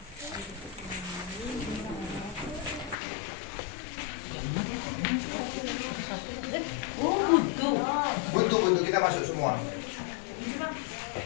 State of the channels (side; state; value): right; drops out; at 3.0 s